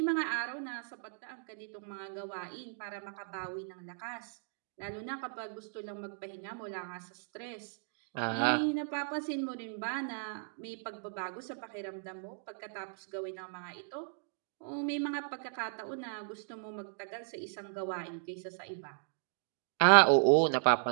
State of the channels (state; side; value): silent; left; digital silence